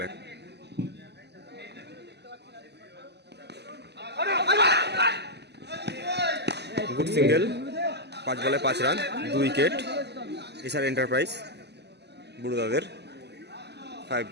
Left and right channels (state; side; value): late; left; 0.49 ms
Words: গুড সিঙ্গেল, 5 বলে 5 রান, 2 উইকেট। এসআর এন্টারপ্রাইজ বুড়োদাদের,